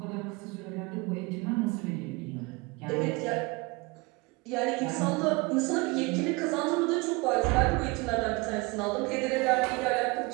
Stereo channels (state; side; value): quieter; left; 26.0 dB